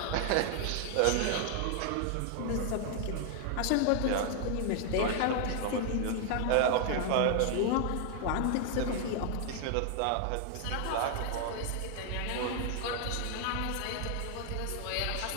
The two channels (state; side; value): different; both; correlation 0.00